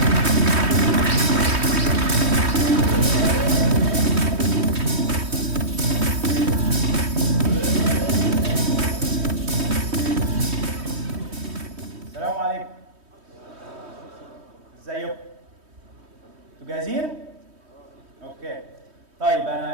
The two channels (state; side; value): late; left; 3.2 ms